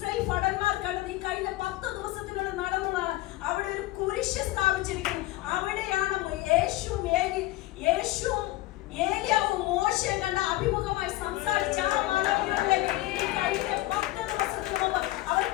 ഭടന്മാർ കണ്ടത് ഈ കഴിഞ്ഞ 10 ദിവസത്തിനുള്ളിൽ നടന്നതാണ്. അവിടെ ഒരു കുരിശ് സ്ഥാപിച്ചിരിക്കുന്നു. അവിടെയാണ് യേശുവും ഏലിയാവും മോശയും കണ്ട അഭിമുഖമായി സംസാരിച്ച ആ മലമുകളിലേക്ക് ഈ കഴിഞ്ഞ 10 ദിവസത്തിന് മുമ്പ് അവർ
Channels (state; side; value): quieter; right; 17.6 dB